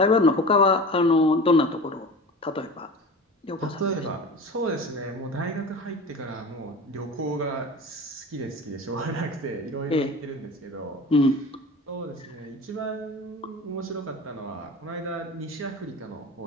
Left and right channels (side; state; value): both; normal; correlation 0.35